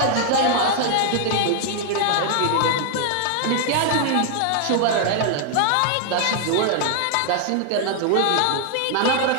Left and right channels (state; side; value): different; both; correlation 0.00